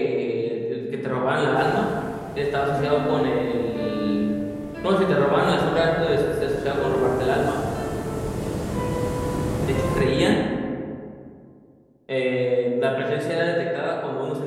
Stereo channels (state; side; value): identical; both; correlation 1.00